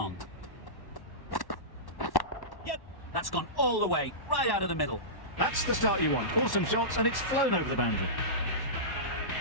That's gone all the way, right out of the middle. That's the start you want. Awesome shots, and it's flown over the boundary.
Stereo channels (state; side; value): late; right; 1.1 ms